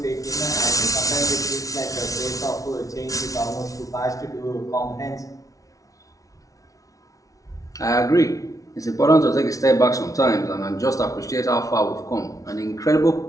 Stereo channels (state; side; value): late; right; 0.17 ms